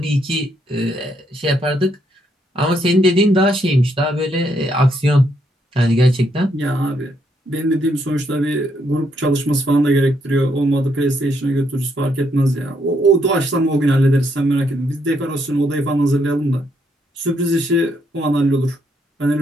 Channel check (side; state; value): both; normal; correlation 0.74